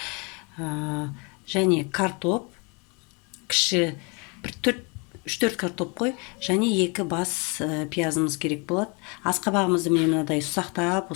және картоп, кіші 3-4 картоп қой, және 2 бас пиязымыз керек болады. Асқабағымызды мен мынадай ұсақтап,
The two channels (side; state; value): right; quieter; 31.5 dB